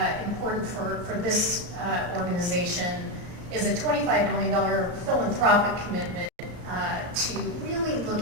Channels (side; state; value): left; late; 34 ms